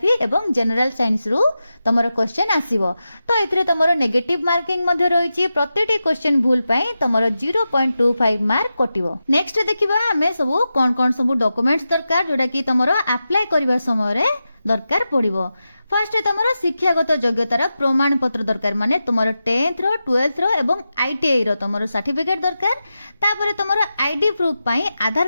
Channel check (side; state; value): both; inverted; correlation -0.91